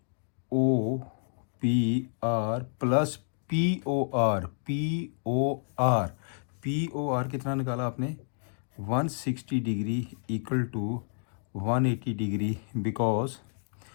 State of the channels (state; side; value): silent; right; digital silence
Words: O P R plus P O R कितना निकाला आपने? 160 degree equal to 180 degree, because